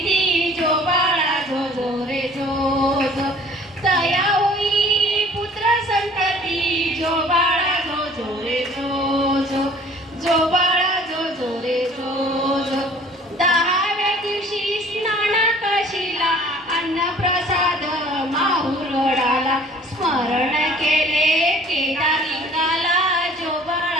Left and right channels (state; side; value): normal; both; correlation 0.51